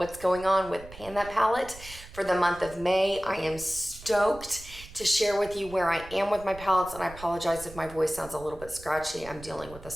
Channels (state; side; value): noise; right; rumble, 17 dB below the sound